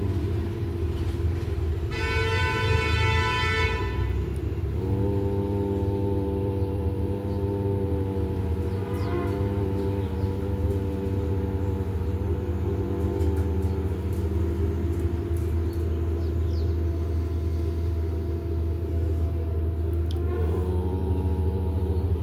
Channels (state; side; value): identical; both; correlation 1.00